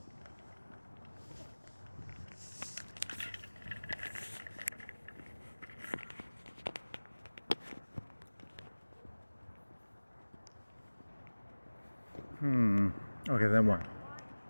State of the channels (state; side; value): inverted; both; correlation -1.00